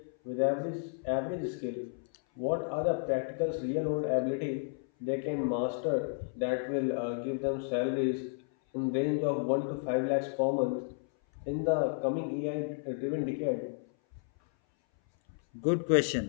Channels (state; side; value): silent; right; 56 dB below the other